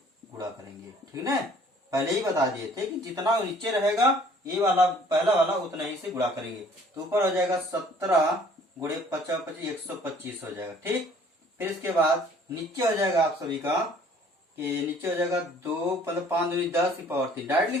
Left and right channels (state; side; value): normal; both; correlation 0.56